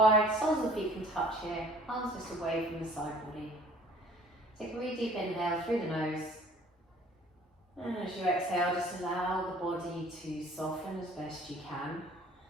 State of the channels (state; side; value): normal; both; correlation 0.52